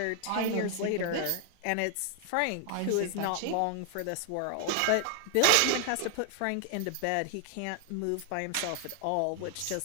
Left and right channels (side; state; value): both; different; correlation 0.00